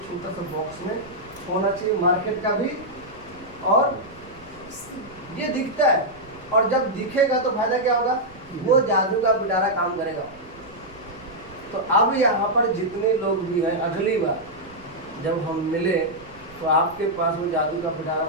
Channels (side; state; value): right; noise; rumble, 23 dB below the sound